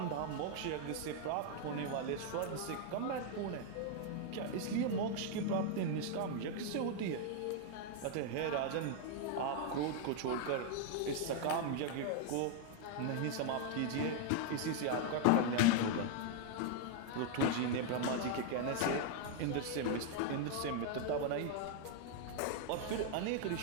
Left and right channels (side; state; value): both; different; correlation 0.00